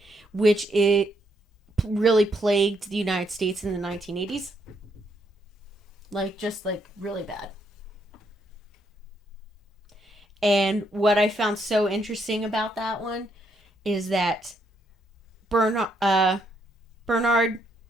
which it really plagued the United States in the 1980s. Just really bad. And what I found so interesting about that one is that Bernard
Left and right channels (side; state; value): both; normal; correlation 0.74